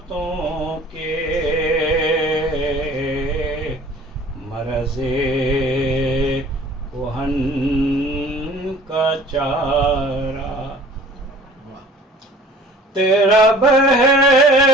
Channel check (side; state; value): both; normal; correlation 0.48